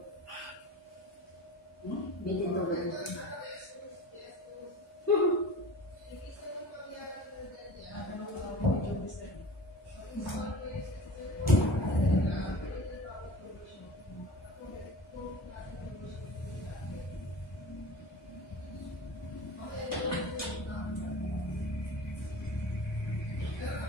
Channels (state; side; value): normal; both; correlation 0.38